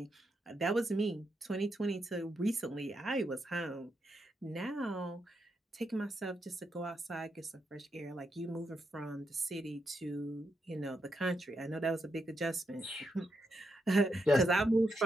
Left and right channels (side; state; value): both; normal; correlation 0.82